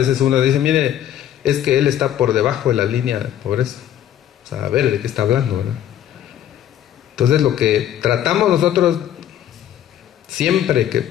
uno dice, mire, es que él está por debajo de la línea de pobreza. O sea, a ver de qué está hablando, ¿verdad? Entonces lo que tratamos nosotros siempre que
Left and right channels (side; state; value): right; quieter; 11.1 dB